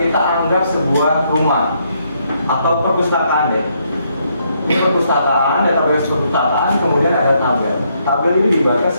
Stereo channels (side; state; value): both; inverted; correlation -0.74